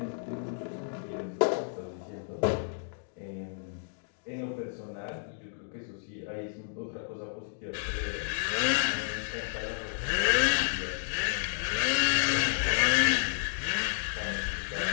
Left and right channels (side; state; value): right; silent; digital silence